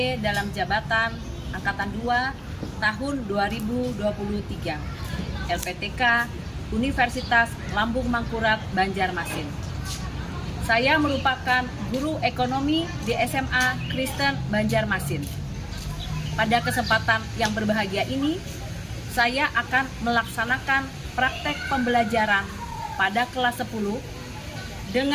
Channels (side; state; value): both; identical; correlation 1.00